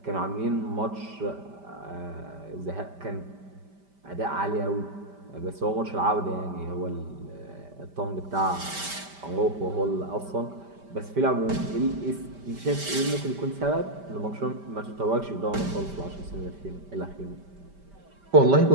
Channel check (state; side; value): late; left; 5.1 ms